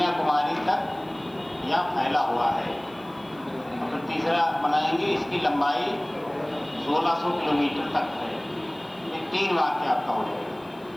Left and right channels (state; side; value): noise; left; hiss, 29 dB below the sound